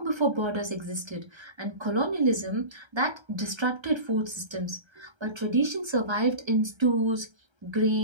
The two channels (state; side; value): late; left; 1.3 ms